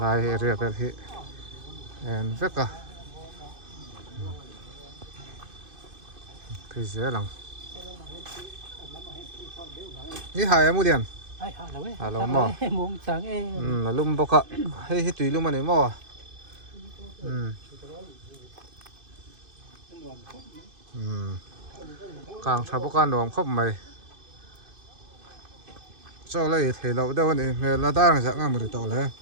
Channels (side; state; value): left; late; 2.5 ms